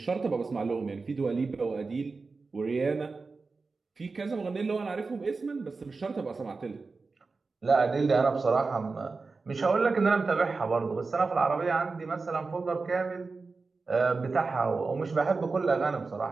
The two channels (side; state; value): left; quieter; 4.1 dB